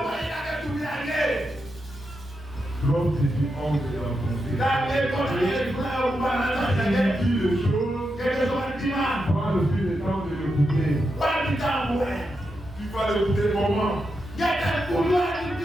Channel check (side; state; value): both; normal; correlation 0.86